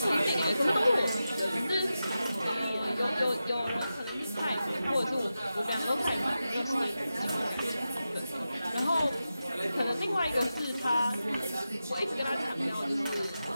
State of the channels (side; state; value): both; inverted; correlation -0.92